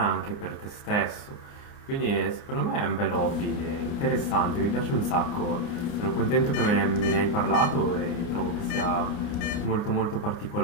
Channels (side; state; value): right; late; 29 ms